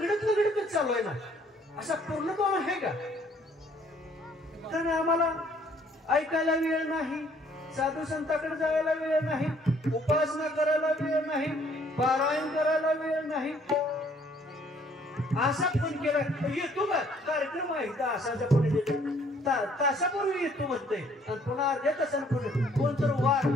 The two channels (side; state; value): both; normal; correlation 0.62